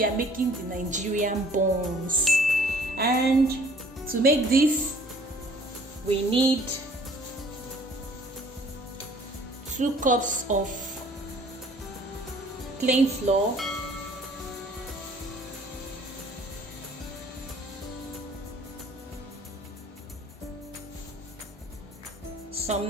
are making the Nigerian buns, and to make this we need 2 cups of plain flour, some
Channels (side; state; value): both; normal; correlation 0.54